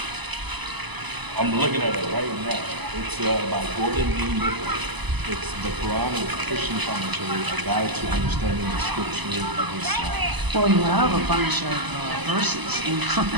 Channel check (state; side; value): late; left; 1.0 ms